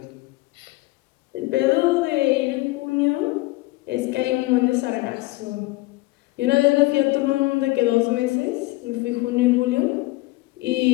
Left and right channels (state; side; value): quieter; right; 20.8 dB